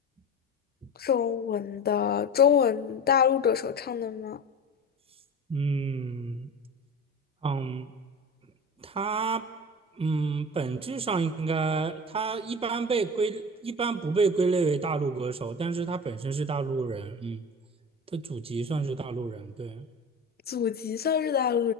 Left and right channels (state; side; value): normal; both; correlation 0.31